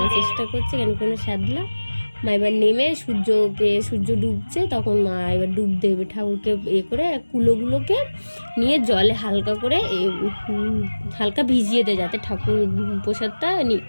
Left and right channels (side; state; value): both; inverted; correlation -1.00